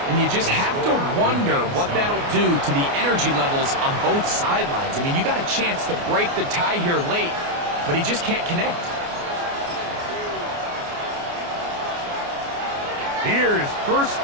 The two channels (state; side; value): late; left; 29 ms